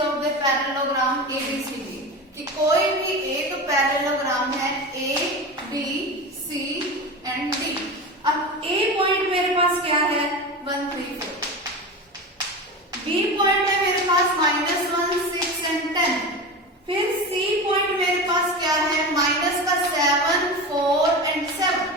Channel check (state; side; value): normal; both; correlation 0.26